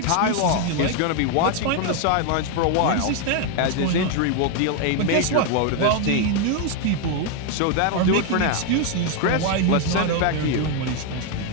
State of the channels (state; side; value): different; both; correlation 0.01